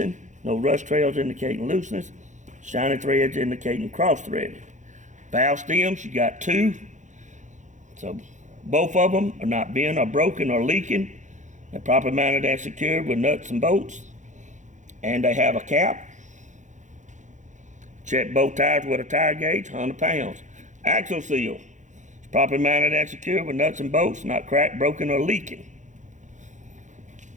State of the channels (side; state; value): left; late; 0.35 ms